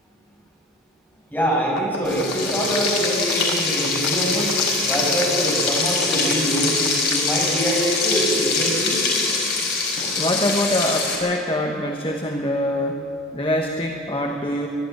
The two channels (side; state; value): both; normal; correlation 0.35